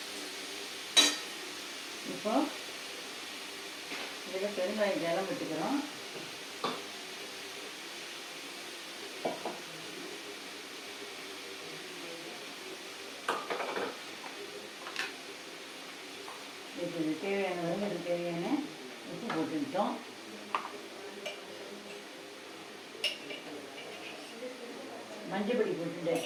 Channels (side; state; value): both; identical; correlation 1.00